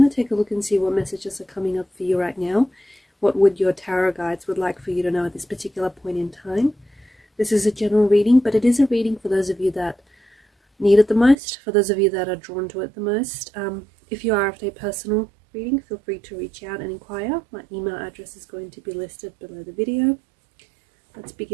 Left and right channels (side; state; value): left; drops out; at 11.4 s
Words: to take a look and see what messages are coming up for you right now. What would your tarot guides would like for you to know at this particular point in time. This is a general reading, but it is a reading for those of you that need it the most, for those of you that are drawn to it the most. If you are after a personal reading, feel free to reach out and inquire. My email address is going to be listed below the video. Let's